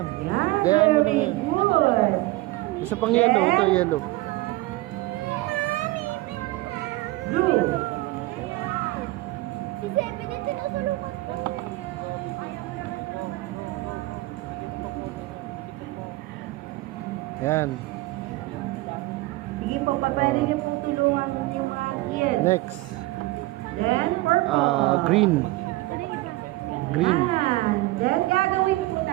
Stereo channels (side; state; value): left; quieter; 19.6 dB